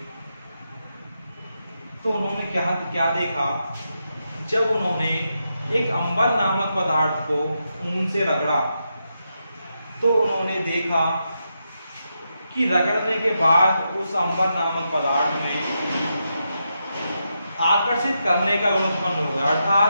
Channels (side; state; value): both; inverted; correlation -0.85